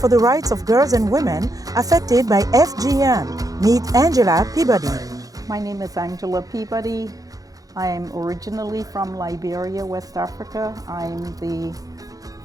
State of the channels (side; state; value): left; late; 0.17 ms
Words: the rights of girls and women affected by FGM. Meet Angela Peabody. My name is Angela Peabody. I am originally from Liberia, West Africa. I'm the